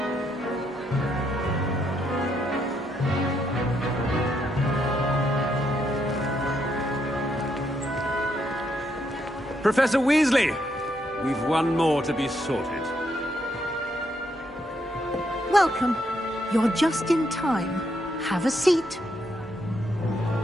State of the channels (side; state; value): both; normal; correlation 0.77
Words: Professor Weasley, we've one more to be sorted. Welcome. You're just in time. Have a seat.